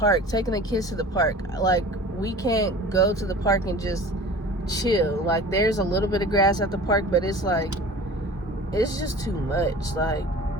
taking the kids to the park. Like, we can't go to the park and just chill. Like, there's a little bit of grass at the park, but it's like, it's just too much. Like,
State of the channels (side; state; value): both; normal; correlation 0.41